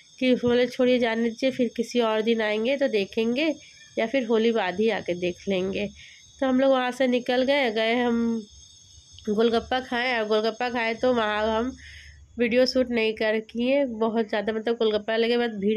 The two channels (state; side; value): identical; both; correlation 1.00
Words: कि बोले छोड़िए जाने दीजिए, फिर किसी और दिन आएंगे तो देखेंगे, या फिर होली बाद ही आके देख लेंगे। तो हम लोग वहाँ से निकल गए हम गोलगप्पा खाएँ, और गोलगप्पा खाए तो वहाँ हम वीडियो शूट नहीं कर किए, बहुत ज़्यादा मतलब गोलगप्पा लगे बाद